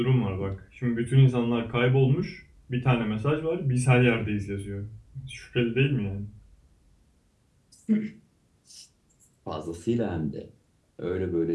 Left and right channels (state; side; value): identical; both; correlation 1.00